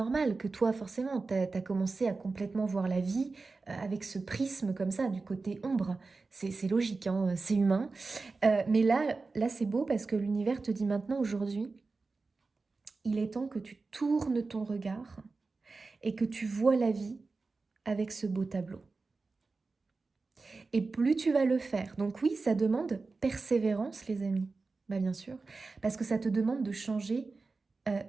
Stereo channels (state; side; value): quieter; left; 3.9 dB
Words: que toi, forcément, t'as commencé à complètement voir la vie avec ce prisme comme ça, du côté ombre. C'est logique, hein, c'est humain. Mais là c'est beau parce que l'univers te dit maintenant, aujourd'hui, il est temps que tu tournes ton regard et que tu vois la vie avec ce beau tableau. Et plus tu vas le faire. Donc oui, ça demande persévérance, les amis. Bah bien sûr, parce que ça te demande de changer